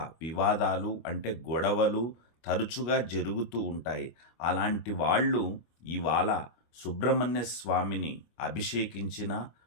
వివాదాలు అంటే గొడవలు తరచుగా జరుగుతూ ఉంటాయి. అలాంటి వాళ్ళు ఇవాళ సుబ్రహ్మణ్య స్వామిని అభిషేకించిన,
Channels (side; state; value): right; late; 25 ms